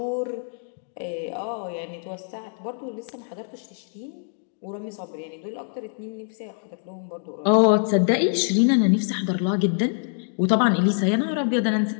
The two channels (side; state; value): right; silent; 62 dB below the other